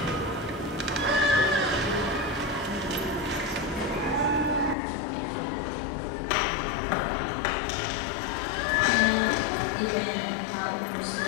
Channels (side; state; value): right; drops out; at 4.8 s